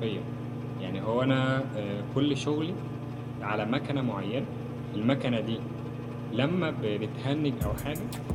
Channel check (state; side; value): identical; both; correlation 1.00